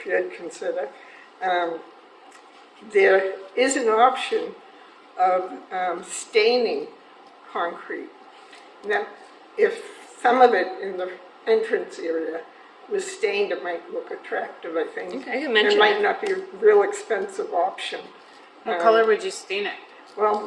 you'd consider. There is an option of staining concrete. Now, if some of it in the entrance area was stained, it might look attractive, I think. Okay, you mentioned It might it. not be a real expensive option. What color would you stain it?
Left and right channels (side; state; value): both; identical; correlation 1.00